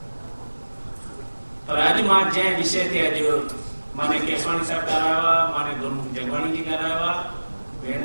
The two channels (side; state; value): both; inverted; correlation -1.00